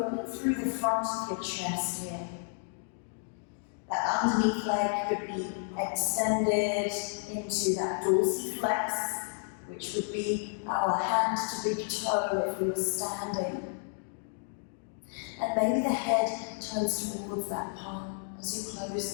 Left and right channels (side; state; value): right; silent; 57 dB below the other